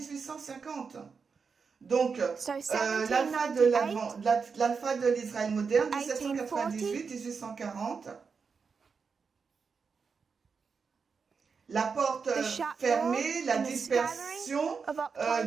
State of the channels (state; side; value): quieter; left; 5.4 dB